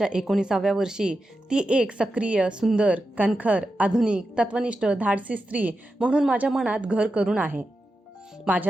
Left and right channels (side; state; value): both; normal; correlation 0.90